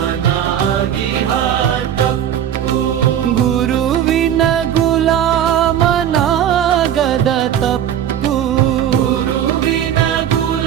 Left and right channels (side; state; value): left; quieter; 10.1 dB